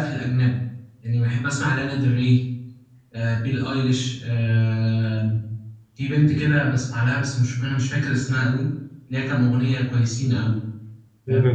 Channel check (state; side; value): identical; both; correlation 1.00